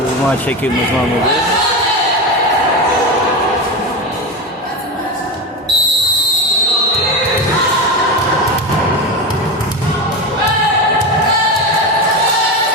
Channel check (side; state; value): both; normal; correlation 0.19